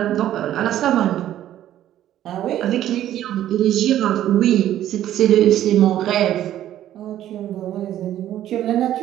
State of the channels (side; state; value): left; quieter; 12.3 dB